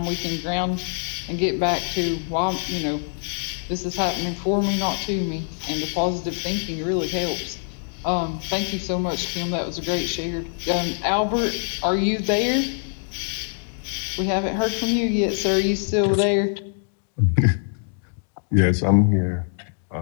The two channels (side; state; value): right; silent; digital silence